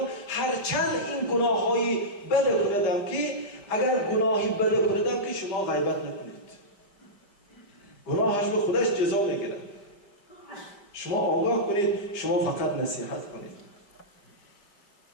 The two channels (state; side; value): late; right; 5.0 ms